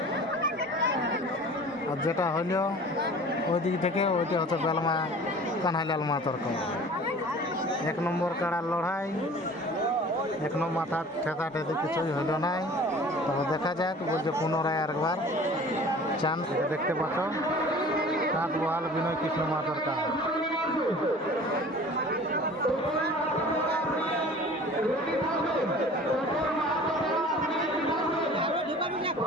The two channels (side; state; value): both; normal; correlation 0.44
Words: আর যেটা হইল ওই দিক থেকে ওইটা হচ্ছে বেলমা কানাইলাল মাহাতোর কাড়া। 1 নম্বর কাড়ার লড়াই, 1 নম্বর মাথা ঠেকা ঠেকি কিছুই হইল নাই। তবে দেখা যাক, বলছে পুনরায় আরেকবার চান্স। দেখতে পাচ্ছ কাঁচ বহাল বিনয় কৃষ্ণ মাহাতোর কাড়া।